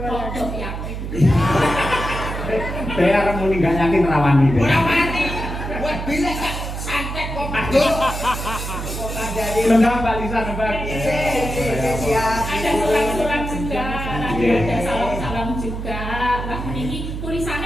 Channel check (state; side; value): noise; right; hum, 6 dB below the sound